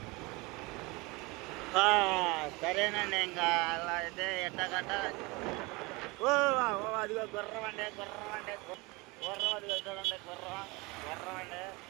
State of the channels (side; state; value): left; quieter; 24.6 dB